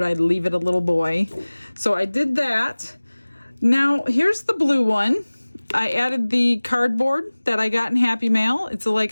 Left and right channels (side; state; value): both; inverted; correlation -1.00